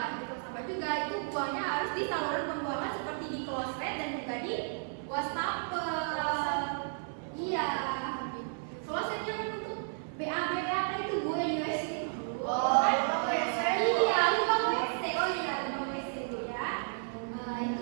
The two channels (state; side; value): silent; left; 56 dB below the other